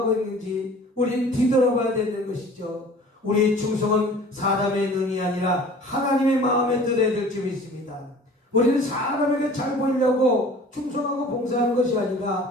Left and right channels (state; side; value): normal; both; correlation 0.46